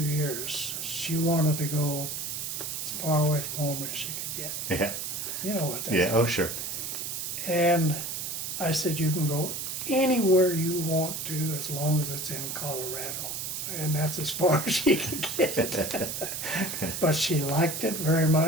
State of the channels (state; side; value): noise; right; hiss, 4 dB below the sound